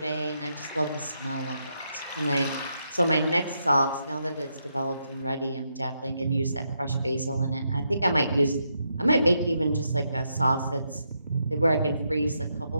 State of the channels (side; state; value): both; inverted; correlation -0.81